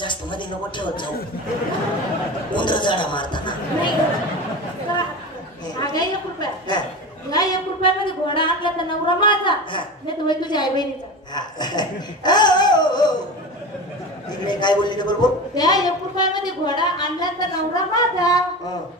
मध्ये नको ठेवत जाऊ. उंदर जाडा मारताना. नाही 1 रुपया. नाही 1 रुपयामध्ये घोडा आणला तर नवरा माझा, नाही तर तुझ्या आई बहिणीचा. इकडे काय बोलली बरोबर. त्या 1 रुपयामध्ये घोडा आणला तर नवरा माझा,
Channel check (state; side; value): normal; both; correlation 0.28